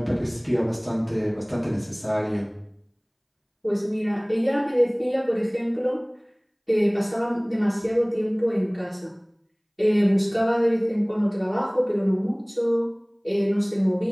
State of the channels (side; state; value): both; identical; correlation 1.00